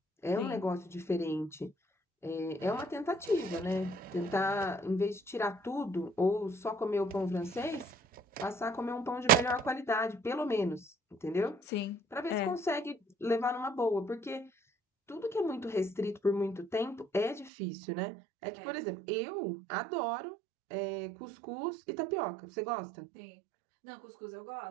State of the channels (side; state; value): left; drops out; at 17.5 s